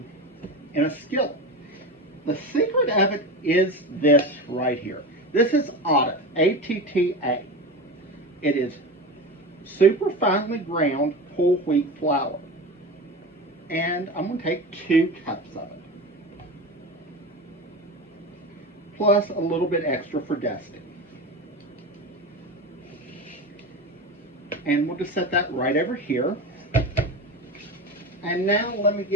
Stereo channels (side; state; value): both; normal; correlation 0.26